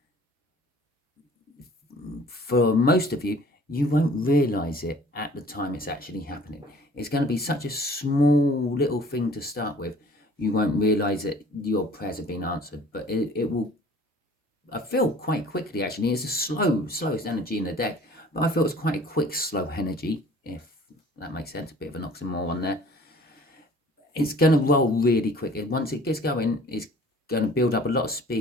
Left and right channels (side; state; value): both; normal; correlation 0.51